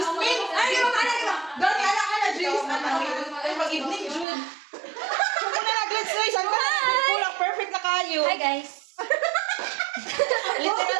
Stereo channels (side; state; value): left; drops out; at 4.2 s